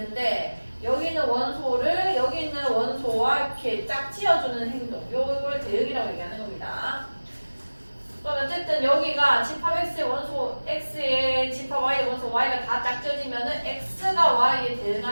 여기 있는 원소를 여기 있는 원소와 이렇게 짝지어주는 행동, 요거를 대응이라고 얘기하는 겁니다. 그럼 어쨌든 여기가 집합 x의 원소 x의 집합 y의 원소 y가 다 짝지어지면은 x가 y에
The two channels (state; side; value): inverted; both; correlation -1.00